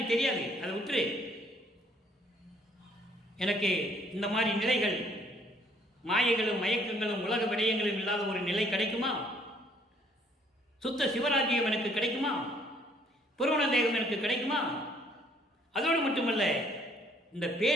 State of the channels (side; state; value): both; normal; correlation 0.63